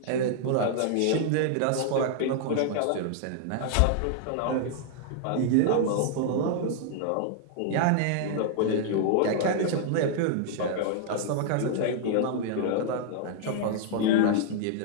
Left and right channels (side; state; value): both; different; correlation -0.01